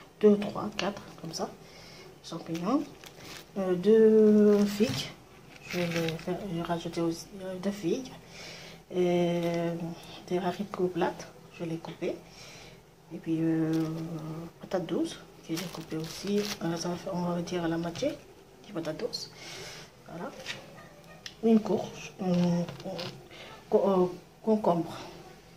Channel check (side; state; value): both; identical; correlation 1.00